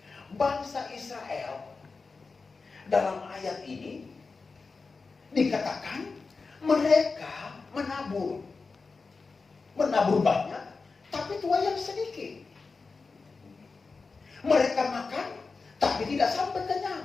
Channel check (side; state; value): right; quieter; 4.3 dB